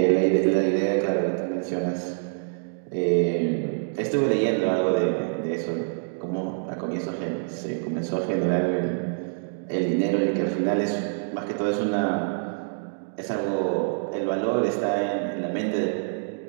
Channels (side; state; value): left; silent; digital silence